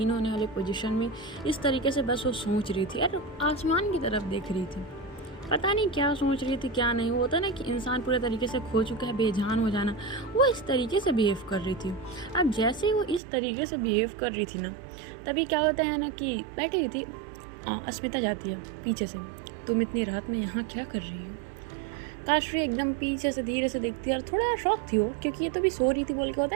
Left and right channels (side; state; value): left; drops out; at 13.2 s